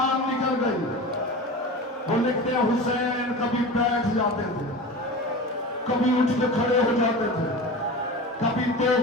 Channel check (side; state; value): both; normal; correlation 0.31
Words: نکل گئی۔ وہ لکھتے ہیں حسین کبھی بیٹھ جاتے تھے، کبھی اٹھ کے کھڑے ہو جاتے تھے، کبھی 2